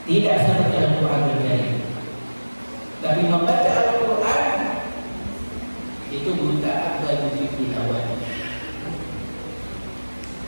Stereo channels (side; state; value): both; inverted; correlation -1.00